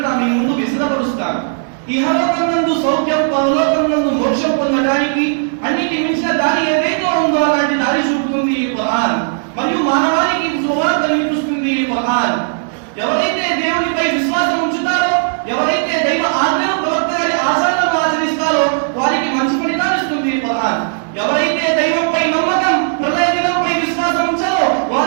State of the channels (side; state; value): left; silent; digital silence